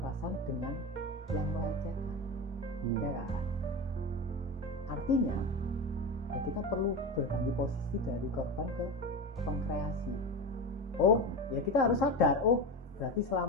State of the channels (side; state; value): both; normal; correlation 0.23